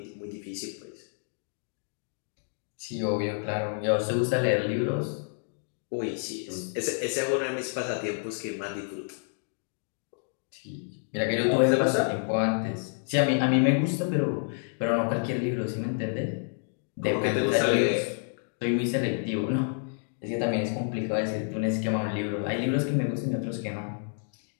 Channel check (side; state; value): right; silent; 59 dB below the other